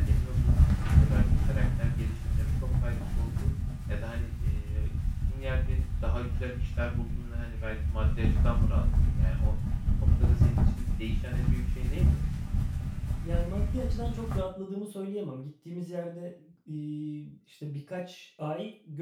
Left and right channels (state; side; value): identical; both; correlation 1.00